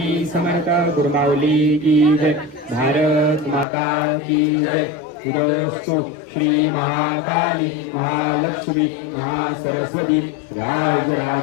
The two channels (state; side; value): drops out; right; at 3.7 s